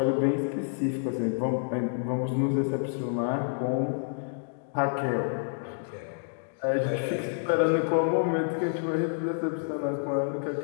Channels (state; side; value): silent; right; digital silence